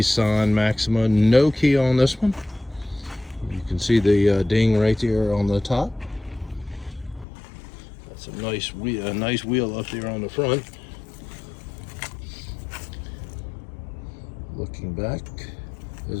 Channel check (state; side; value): drops out; right; at 7.2 s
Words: Maxima. No key on this one. You can see the ding right there on the top. That's a nice wheel up there on the front. Looking back as